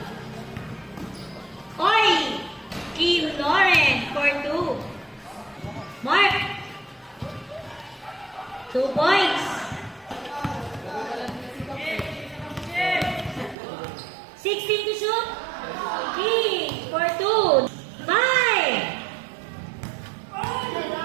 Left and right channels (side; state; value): left; drops out; at 13.6 s